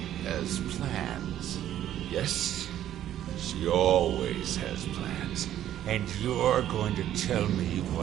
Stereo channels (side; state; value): left; quieter; 11.7 dB